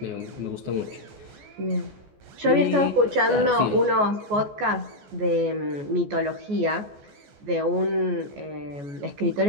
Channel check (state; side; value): late; left; 14 ms